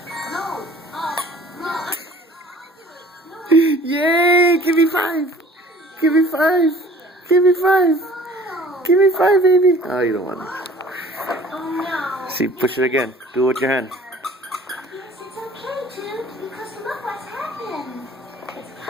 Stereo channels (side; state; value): both; normal; correlation 0.49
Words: Yay! Give me 5. Give me 5. Give me 5. Give me 5, baby. Oh, you don't want it. Oh no. See, push it again. Do it with your hand. Yes, it's okay, Dude, because look what's happened. It's